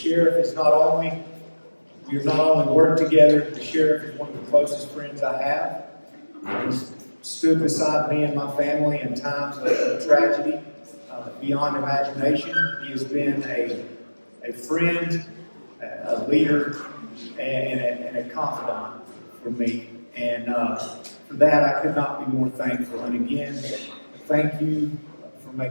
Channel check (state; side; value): inverted; both; correlation -1.00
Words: is we have not only worked together, the sheriff is one of the closest friends I have. He's stood beside me and my family in times of tragedy beyond imagination. He has been a friend, a leader, and a confidant for me. And for that, I could not be more thankful. And again, thank you for